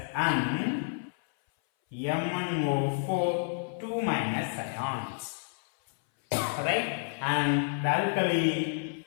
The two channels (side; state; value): right; silent; 58 dB below the other